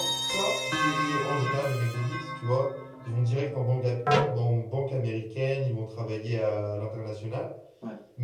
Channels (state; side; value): identical; both; correlation 1.00